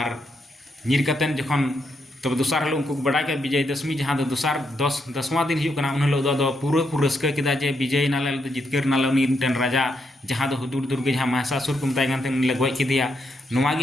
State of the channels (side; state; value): both; normal; correlation 0.79